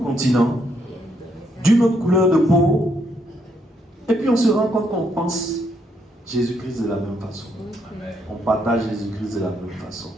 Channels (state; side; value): normal; both; correlation 0.74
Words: continent, d'une autre couleur de peau. Et puis on se rend compte qu'on pense Jésus-Christ de la même façon. On partage Jésus-Christ de la même façon.